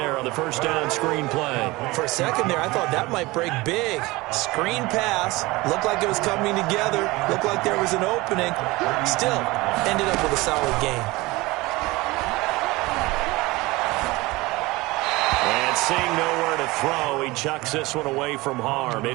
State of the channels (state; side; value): quieter; left; 21.4 dB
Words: on the first down screen play. For a second there, I thought that might break big. Screen pass. Looked like it was coming together. Looked like there was an opening. Still, ended up with a solid game. And seeing nowhere to throw, he chucks this one away from harm.